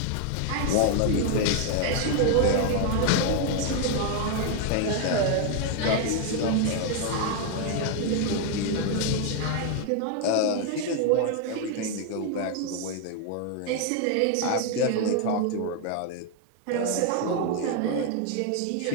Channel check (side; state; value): both; different; correlation 0.01